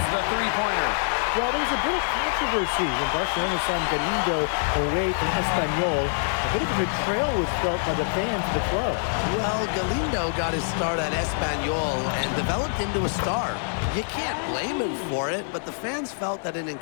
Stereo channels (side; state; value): right; silent; 62 dB below the other